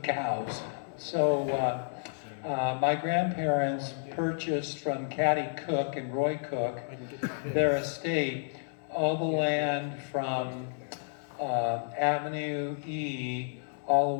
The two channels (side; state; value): right; silent; 57 dB below the other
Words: cows. So my grandparents purchased from Caddy Cook and Roy Cook their estate, all the land from Avenue E all